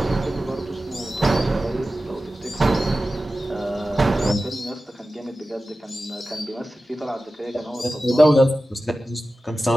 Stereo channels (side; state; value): both; normal; correlation 0.94